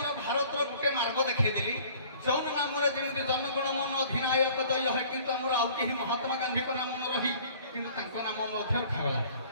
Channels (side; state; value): both; inverted; correlation -0.51